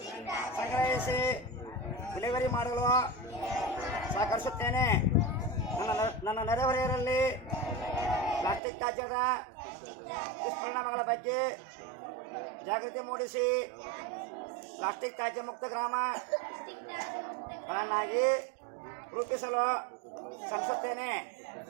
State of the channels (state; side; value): drops out; left; at 8.6 s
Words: ಸಂಗ್ರಹಿಸಿ ವಿಲೇವಾರಿ ಮಾಡಲು ಸಹಕರಿಸುತ್ತೇನೆ. ನನ್ನ ನೆರೆಹೊರೆಯರಲ್ಲಿ ಪ್ಲಾಸ್ಟಿಕ್ ತ್ಯಾಜ್ಯದ ದುಷ್ಪರಿಣಾಮಗಳ ಬಗ್ಗೆ ಜಾಗೃತಿ ಮೂಡಿಸಿ ಪ್ಲಾಸ್ಟಿಕ್ ತ್ಯಾಜ್ಯ ಮುಕ್ತ ಗ್ರಾಮಗಳನ್ನಾಗಿ ರೂಪಿಸಲು ಶ್ರಮಿಸುತ್ತೇನೆ.